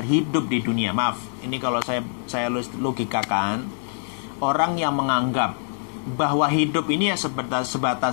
hidup di dunia. Maaf, ini kalau saya logikakan, orang yang menganggap bahwa hidup ini ya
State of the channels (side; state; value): right; silent; digital silence